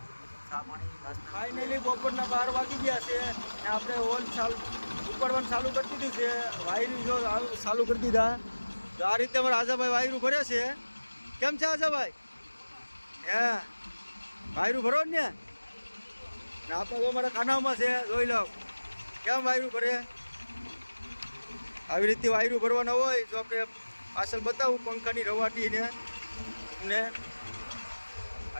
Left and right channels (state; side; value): inverted; both; correlation -1.00